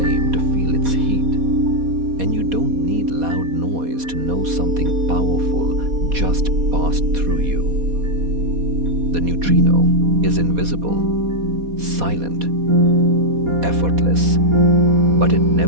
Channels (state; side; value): late; left; 4.2 ms